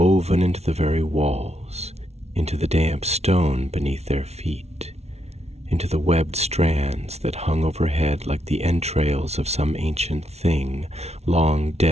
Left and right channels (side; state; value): left; late; 0.31 ms